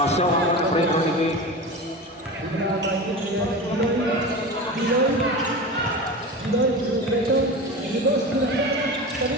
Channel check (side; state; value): both; normal; correlation 0.28